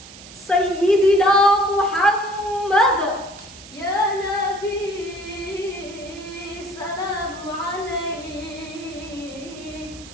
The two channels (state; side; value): noise; right; hiss, 18 dB below the sound